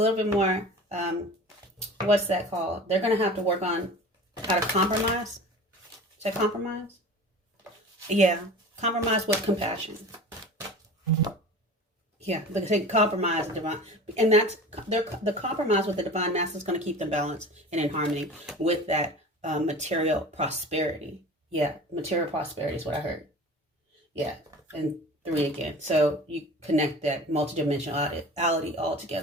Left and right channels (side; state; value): both; normal; correlation 0.38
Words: bit more, what's that called? They're going to have to work on how to compromise. Is that compromise? Yeah, compromise with compassion. Yeah, they compromise the divine, and that's the compromise with the divine masculine is going to keep them balanced and in harmony with that material prosperity. Yeah, material prosperity is what I heard. Yeah, and 3 again. So you connect that multidimensionality all